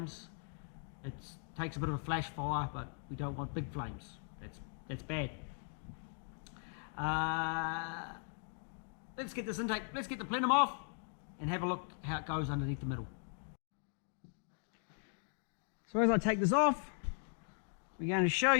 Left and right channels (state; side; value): silent; right; 52 dB below the other